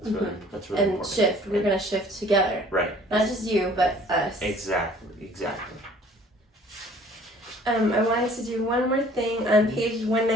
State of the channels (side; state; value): both; normal; correlation 0.53